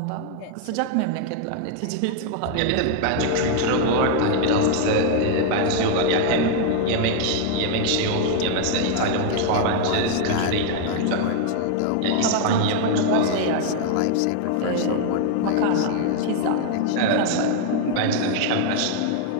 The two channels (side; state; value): both; different; correlation 0.00